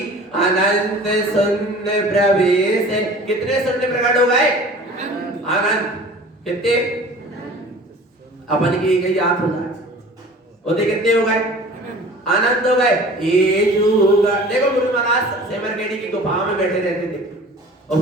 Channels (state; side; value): normal; both; correlation 0.44